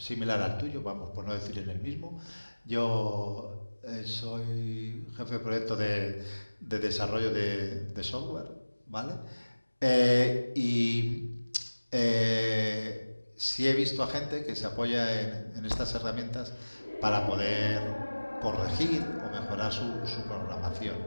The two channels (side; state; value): both; inverted; correlation -1.00